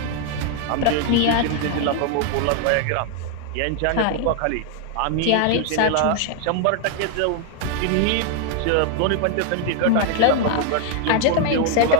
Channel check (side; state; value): both; different; correlation 0.00